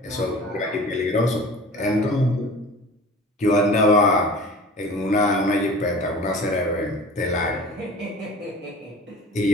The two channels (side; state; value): both; normal; correlation 0.41